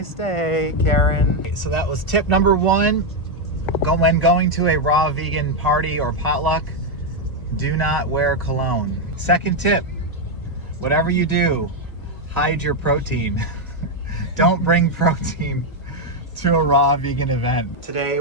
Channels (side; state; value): right; late; 1.9 ms